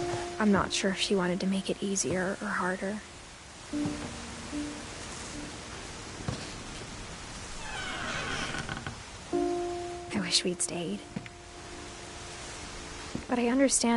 I'm not sure if she wanted to make it easier or harder. I wish we'd stayed. But I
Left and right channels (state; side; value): identical; both; correlation 1.00